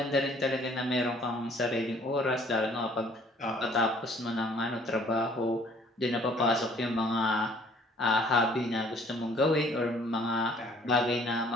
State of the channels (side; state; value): both; normal; correlation 0.57